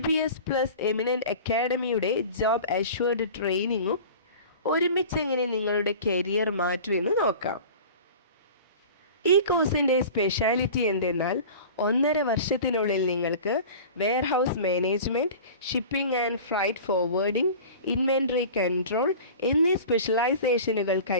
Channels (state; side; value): inverted; both; correlation -0.38